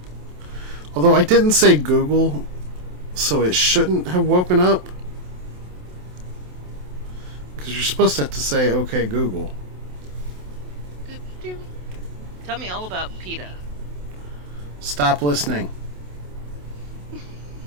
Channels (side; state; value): left; late; 27 ms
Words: Although I didn't say Google, so it shouldn't have woken up. Because you're supposed to have to say, okay, Google. Tell me all about PETA. Stop listening.